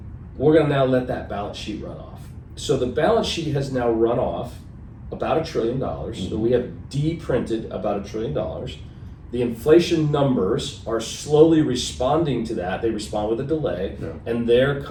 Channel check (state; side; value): identical; both; correlation 1.00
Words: we're going to now let that balance sheet run off. So the balance sheet has now run off about $1 trillion. So we have de-printed about $1 trillion. The inflation numbers are slowly responding to that. They respond with a delay, Yeah. and they're